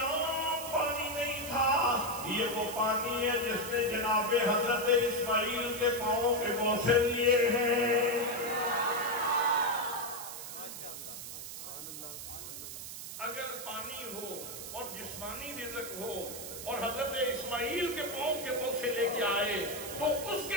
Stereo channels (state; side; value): noise; right; hiss, 9 dB below the sound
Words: پانی نہیں تھا، یہ وہ پانی ہے جس نے جناب حضرت اسماعیل کے پاؤں کے بوسے لیے ہیں۔ اگر پانی ہو اور جسمانی رزق ہو اور حضرت اسماعیل کے پاؤں کے بوسے لے کے آئے تو اس